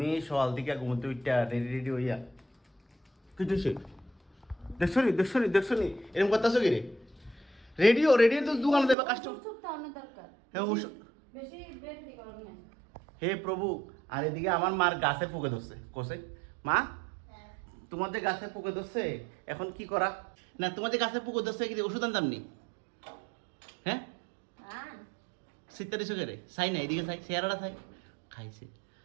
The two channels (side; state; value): left; drops out; at 9.0 s